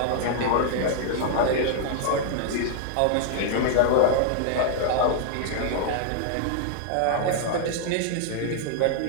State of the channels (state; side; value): different; both; correlation -0.01